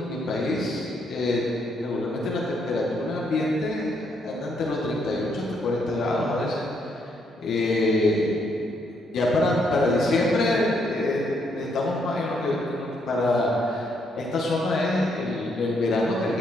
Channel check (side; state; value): both; normal; correlation 0.74